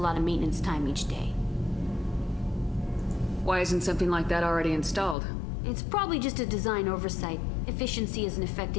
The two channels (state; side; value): drops out; right; at 5.2 s